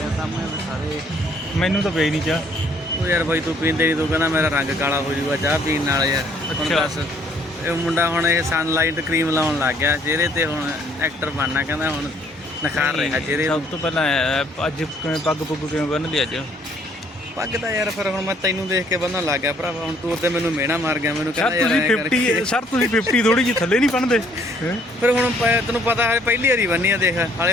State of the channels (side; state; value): both; normal; correlation 0.63